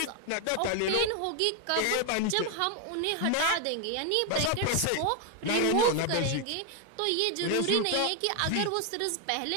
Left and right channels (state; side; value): different; both; correlation 0.01